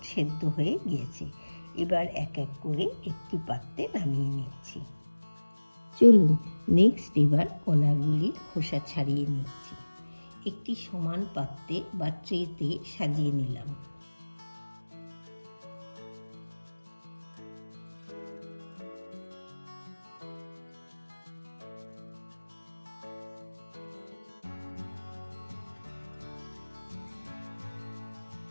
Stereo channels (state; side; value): inverted; both; correlation -1.00